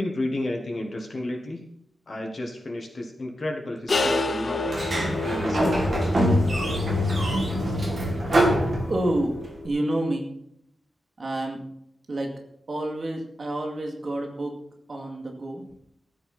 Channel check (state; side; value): normal; both; correlation 0.87